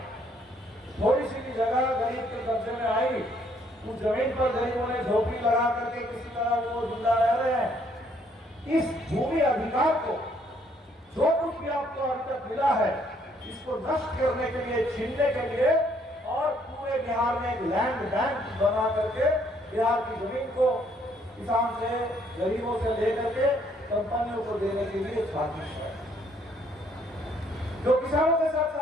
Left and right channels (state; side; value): normal; both; correlation 0.67